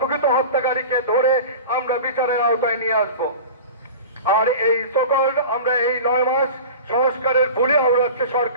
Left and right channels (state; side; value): inverted; both; correlation -0.35